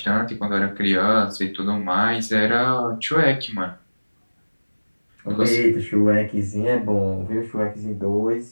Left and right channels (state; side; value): inverted; both; correlation -1.00